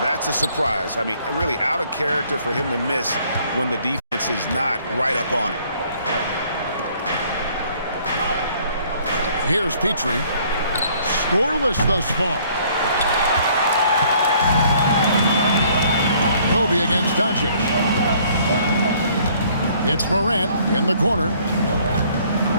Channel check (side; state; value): both; inverted; correlation -0.60